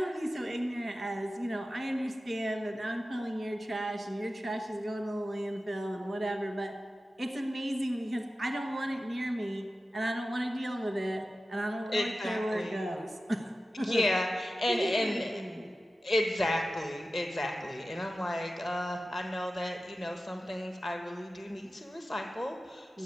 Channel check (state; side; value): normal; both; correlation 0.94